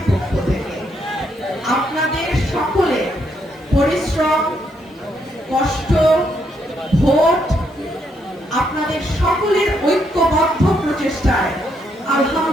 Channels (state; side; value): normal; both; correlation 0.76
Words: পক্ষ থেকে। আপনাদের সকলের পরিশ্রম, কষ্ট, ভোট, আপনাদের সকলের ঐক্যবদ্ধ প্রচেষ্টায়